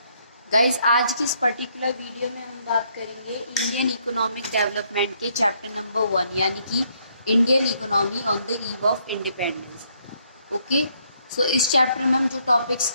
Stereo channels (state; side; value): inverted; both; correlation -0.71